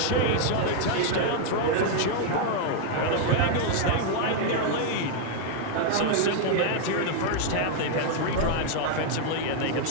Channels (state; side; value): different; both; correlation 0.00